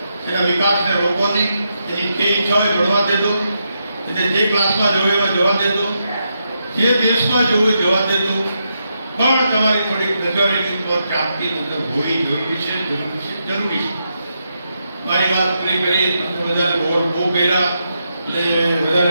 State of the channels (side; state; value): both; inverted; correlation -0.83